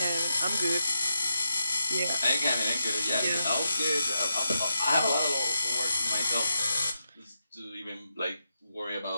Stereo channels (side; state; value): both; inverted; correlation -0.86